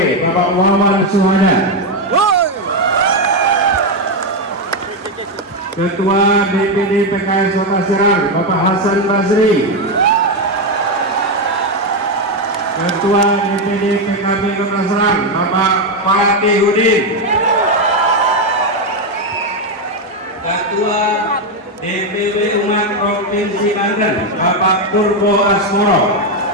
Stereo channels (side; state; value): both; normal; correlation 0.07